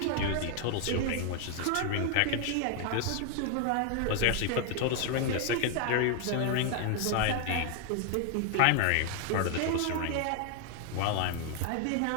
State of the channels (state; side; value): different; both; correlation 0.00